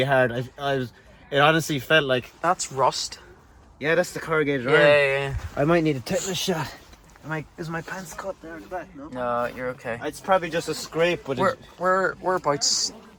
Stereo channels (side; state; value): both; identical; correlation 1.00